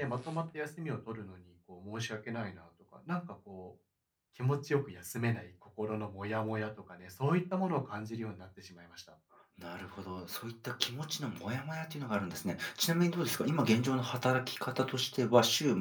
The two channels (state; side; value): identical; both; correlation 1.00